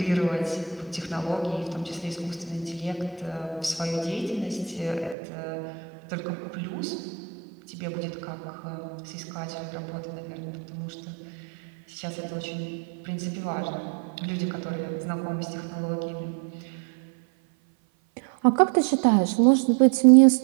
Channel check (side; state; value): left; drops out; at 5.2 s